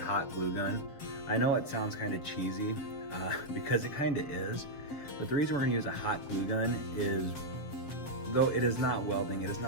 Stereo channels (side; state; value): right; late; 7.5 ms